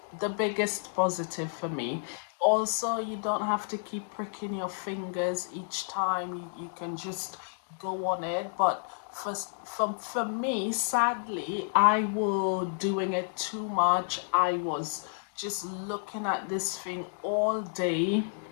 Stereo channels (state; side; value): silent; right; digital silence